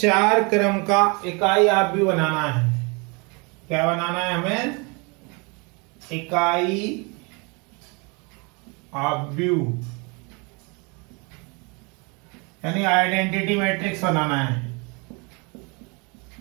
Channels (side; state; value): left; quieter; 30.5 dB